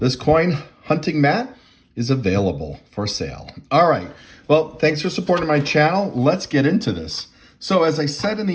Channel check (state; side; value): identical; both; correlation 1.00